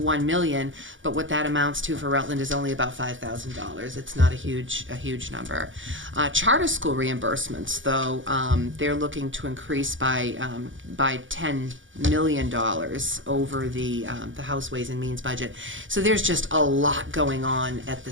million, but what that amounts to for Rutland is only about $5,000. It's not a huge number. Charter school reimbursements, though, they're looking to increase by $10 million over the House Ways and Means budget. So there's just a lot going on at the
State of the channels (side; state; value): left; late; 0.56 ms